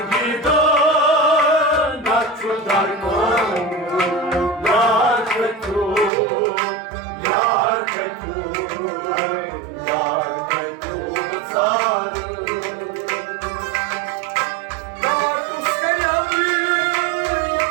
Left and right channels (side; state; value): left; drops out; at 6.1 s